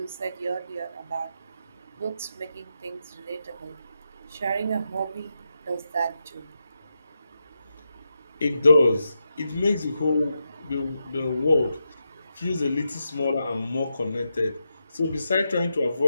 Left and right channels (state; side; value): inverted; both; correlation -0.87